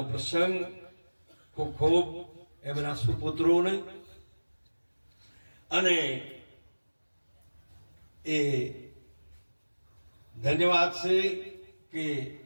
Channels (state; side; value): inverted; both; correlation -1.00